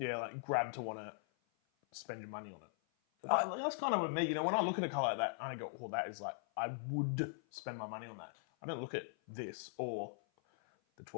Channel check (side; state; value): right; silent; 51 dB below the other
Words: like grab to want to spend your money on it. That's kind of with me. When I look at a car like that, I go, oh, that is like, I would spend my money on that. I don't look at this or the